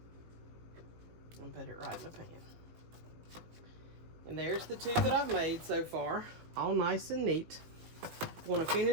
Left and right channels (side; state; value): left; late; 18 ms